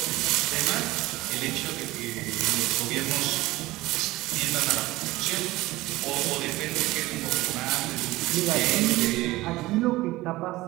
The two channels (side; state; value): left; quieter; 18.5 dB